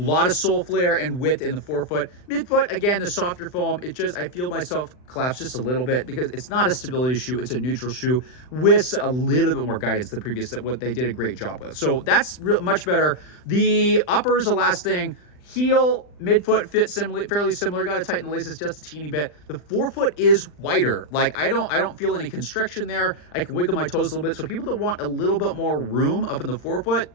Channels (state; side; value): late; right; 39 ms